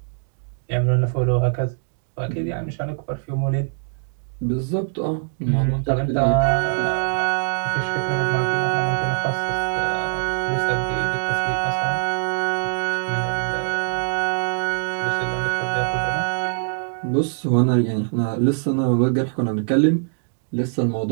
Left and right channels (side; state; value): left; silent; digital silence